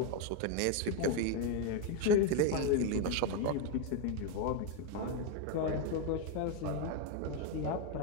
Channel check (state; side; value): different; both; correlation 0.01